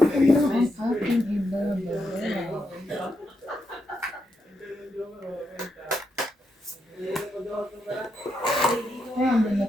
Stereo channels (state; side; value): normal; both; correlation 0.82